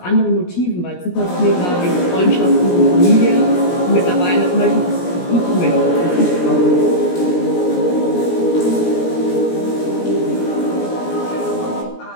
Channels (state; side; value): late; right; 17 ms